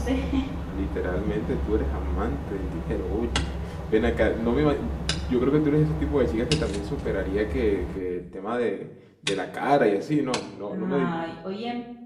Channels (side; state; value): both; identical; correlation 1.00